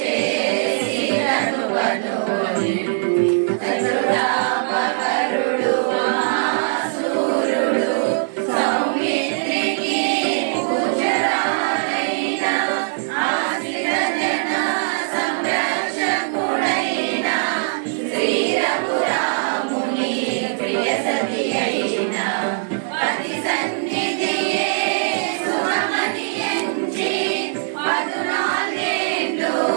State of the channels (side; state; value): left; silent; 65 dB below the other